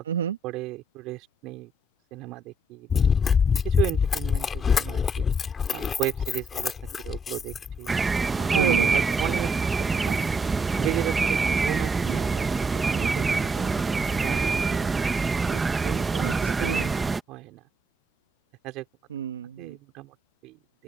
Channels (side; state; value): both; normal; correlation 0.76